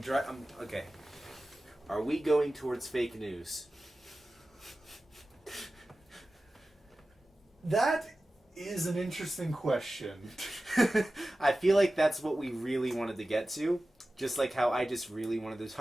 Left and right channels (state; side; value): normal; both; correlation 0.95